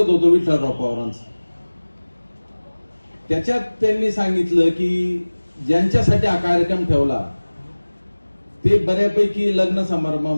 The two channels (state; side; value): inverted; both; correlation -1.00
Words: होतो विठ्ठलराव पवारांचं. त्याच्यात त्यांनी सांगितलं की ज्यांच्यासाठी हा कार्यक्रम ठेवला ते बऱ्यापैकी लग्न